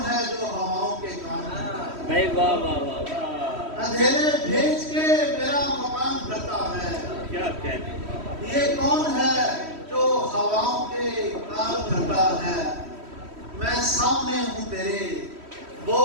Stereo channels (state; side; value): late; left; 3.1 ms